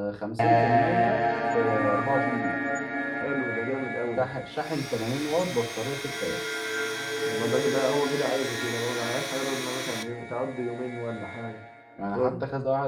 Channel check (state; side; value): identical; both; correlation 1.00